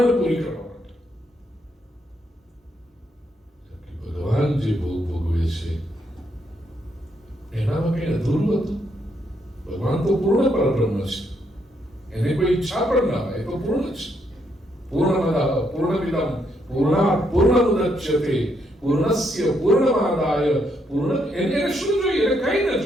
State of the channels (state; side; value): normal; both; correlation 0.76